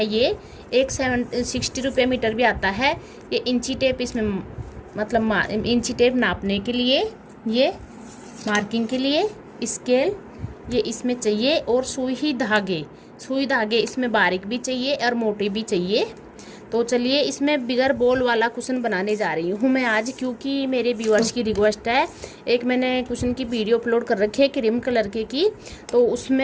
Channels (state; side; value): identical; both; correlation 1.00